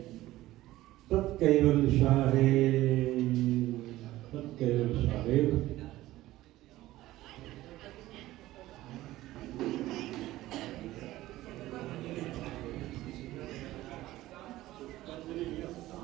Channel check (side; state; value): left; quieter; 16.2 dB